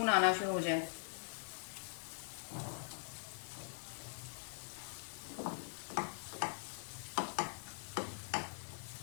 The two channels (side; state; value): right; silent; digital silence